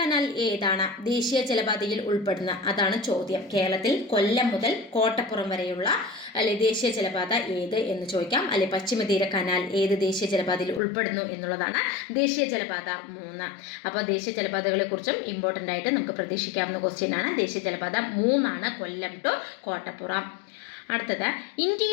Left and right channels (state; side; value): drops out; right; at 10.8 s